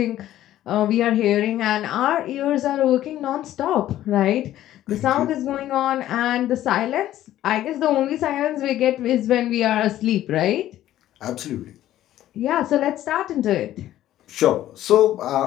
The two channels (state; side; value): quieter; right; 13.2 dB